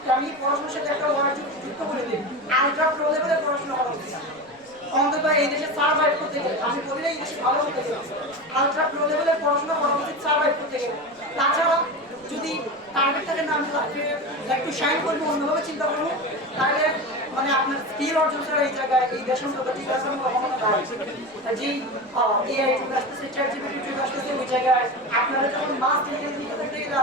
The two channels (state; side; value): noise; right; rumble, 30 dB below the sound